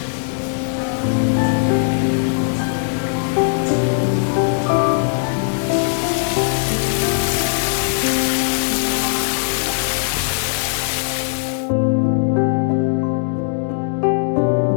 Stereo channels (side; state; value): right; silent; 66 dB below the other